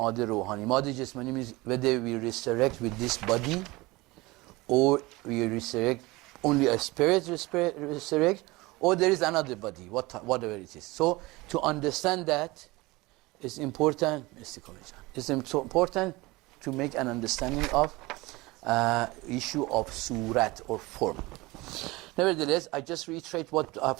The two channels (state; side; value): quieter; left; 21.9 dB